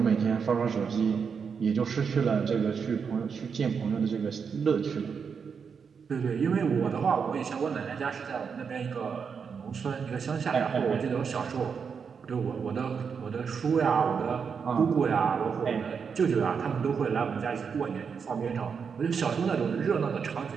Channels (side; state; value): left; quieter; 6.2 dB